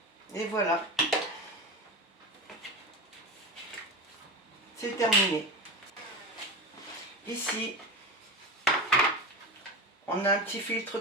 Et voilà. C'est terminé. Ici, on a un petit filtre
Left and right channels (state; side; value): normal; both; correlation 0.24